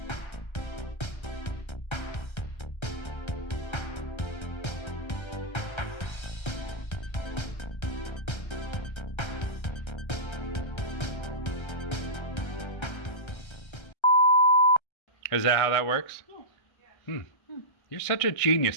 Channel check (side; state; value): right; late; 1.3 ms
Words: Is that how that works? Yeah. You're such a